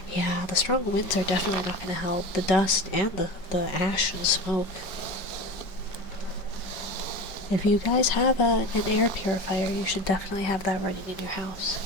Yeah, the strong winds are definitely not going to help. The dust and the ash and smoke. If you guys have an air purifier, you should definitely have that running in your house.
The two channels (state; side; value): late; right; 5.1 ms